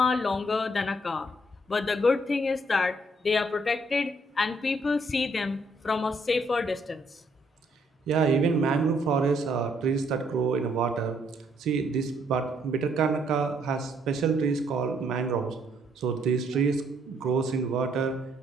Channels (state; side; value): normal; both; correlation 0.69